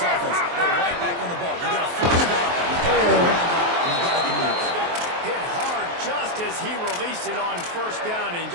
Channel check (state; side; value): late; left; 23 ms